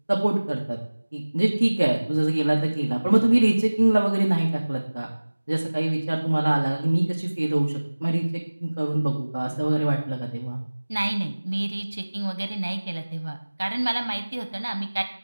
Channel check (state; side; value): inverted; both; correlation -1.00